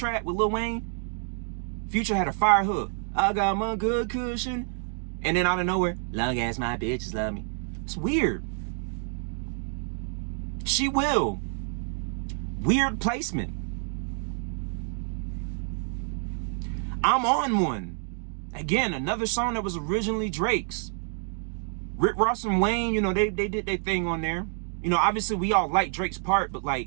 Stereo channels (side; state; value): left; silent; 56 dB below the other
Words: with Lil Wayne? Future had a fire hook. I got my good cushion. And then out of nowhere, long as my bitches love me. It's weird. She Will. Weird placement. I'm On One. Again, another song that was originally Drake's. Rick Ross and Wayne, you know, they did their thing on there. You know, obviously we all like Drake's part, but